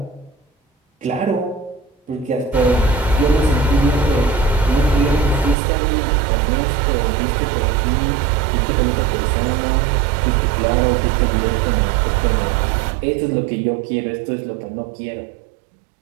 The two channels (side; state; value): left; drops out; at 5.6 s